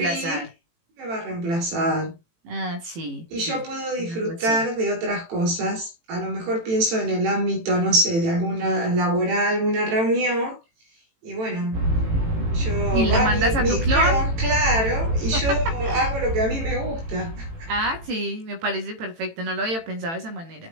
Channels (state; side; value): late; left; 18 ms